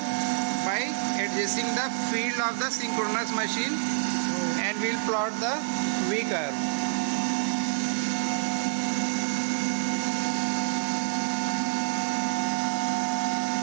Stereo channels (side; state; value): left; silent; digital silence